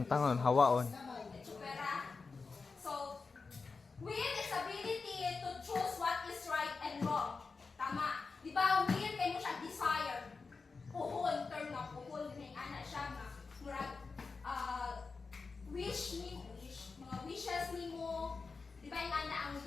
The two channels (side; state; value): right; quieter; 4.5 dB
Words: hawaon. Itsupera. So, will is ability to choose what is right and wrong. Tama. Di ba, will kay mo siya desire. Puhon, term na puhon. May ana siya nga. Murag, mga wishes ni mo. Di ba yung ana ang